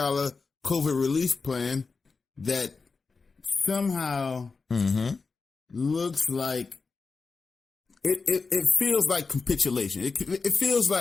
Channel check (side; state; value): right; quieter; 4.5 dB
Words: relief plan that somehow looks like it feels like capitulation. It feels